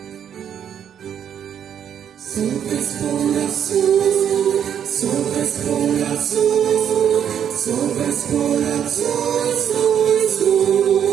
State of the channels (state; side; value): quieter; left; 8.9 dB